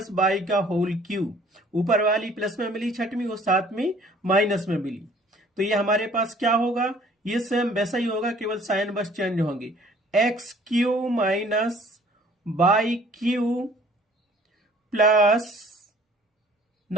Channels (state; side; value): normal; both; correlation 0.55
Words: बाई का होल क्यूब। ऊपर वाली प्लस में मिली छठवीं और सातवीं माइनस में मिली, तो ये हमारे पास क्या होगा, ये सेम वैसा ही होगा, केवल साइन बस चेंज होंगे। X cube minus y Q plus